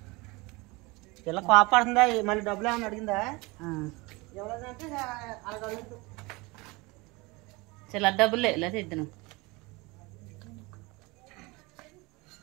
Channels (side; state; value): left; quieter; 24.7 dB